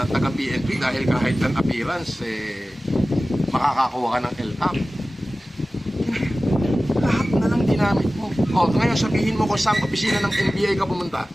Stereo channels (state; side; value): normal; both; correlation 0.96